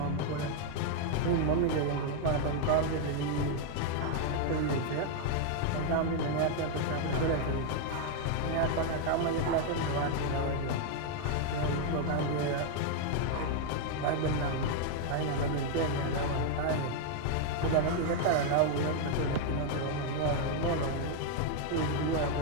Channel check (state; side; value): different; both; correlation 0.00